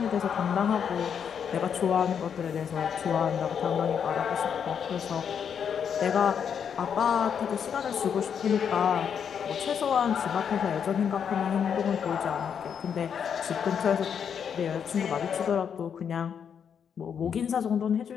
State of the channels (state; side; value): quieter; right; 7.6 dB